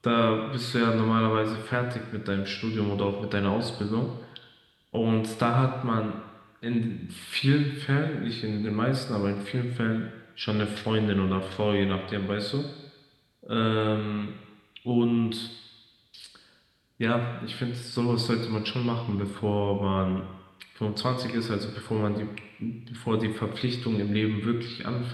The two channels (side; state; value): both; identical; correlation 1.00